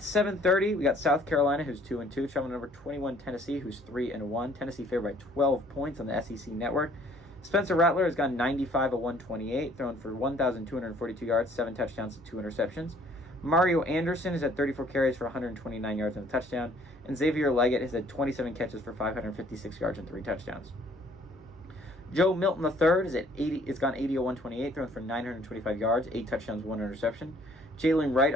we got South Carolina, who's 2-2, traveling number 21 Tennessee, who's 3-1. Tennessee favored by 12 points on the SEC network. Spencer Rattler has gone 95 of 128, thrown for 1,242 yards, 7 touchdowns to 2 interceptions. Mario Anderson has had 34 carries for 129 yards and a touchdown, and Xavier Leggett has had 27 catches for 556 yards and 3 touchdowns. Joe Milton III has gone 80 of 128, thrown for 925 yards, 8 touchdowns, 1 interception. Jalen Wright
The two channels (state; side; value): normal; both; correlation 0.59